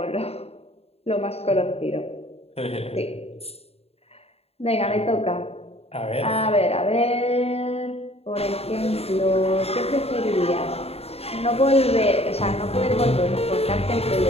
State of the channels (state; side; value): late; right; 0.29 ms